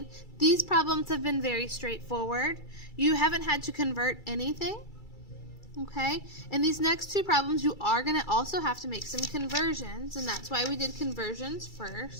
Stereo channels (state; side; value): late; right; 2.3 ms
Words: these problems have been very straightforward. You haven't had to convert anything, okay? And these next two problems, you are going to also have to make some conversions, and that's why we did conversions